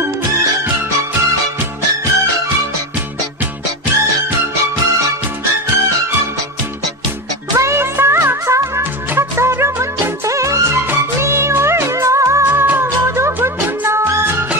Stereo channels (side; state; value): both; normal; correlation 0.20